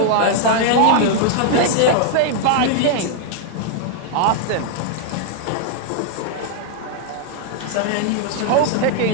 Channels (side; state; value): both; different; correlation 0.00